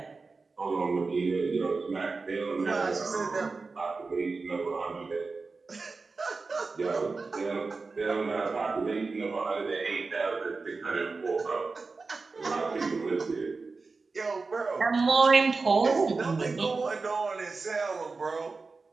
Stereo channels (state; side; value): quieter; left; 4.1 dB